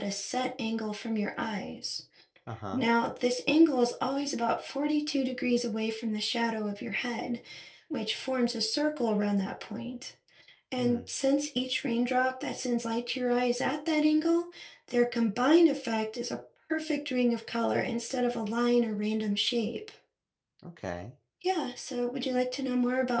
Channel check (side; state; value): both; identical; correlation 1.00